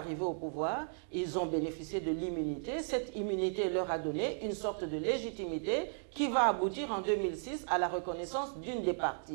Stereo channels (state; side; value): silent; left; digital silence